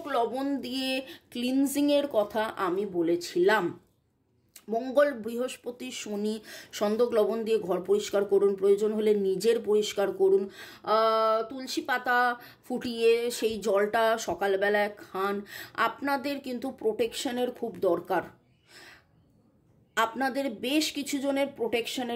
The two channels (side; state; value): both; identical; correlation 1.00